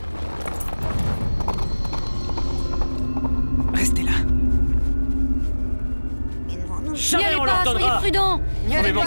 Restez là. N'y allez pas, soyez prudents. On ne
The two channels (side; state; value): both; inverted; correlation -1.00